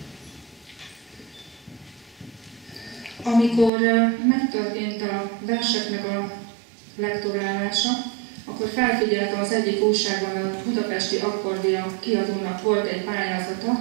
Amikor megtörtént a verseknek a lektorálása, akkor felfigyeltem az egyik újságban, a Budapesti Akkordia kiadónak volt egy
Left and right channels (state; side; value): drops out; left; at 3.7 s